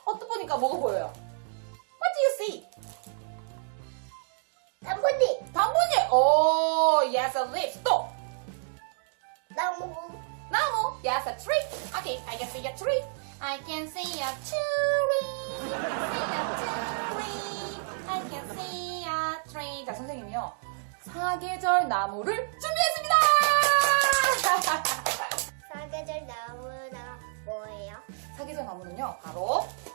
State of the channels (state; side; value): silent; left; digital silence